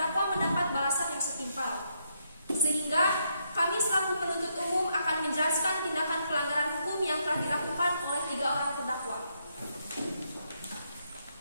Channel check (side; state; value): both; inverted; correlation -0.77